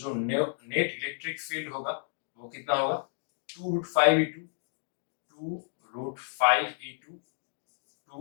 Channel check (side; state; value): right; silent; digital silence